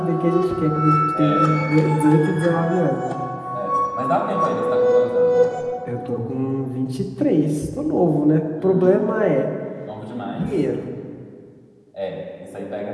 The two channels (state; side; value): identical; both; correlation 1.00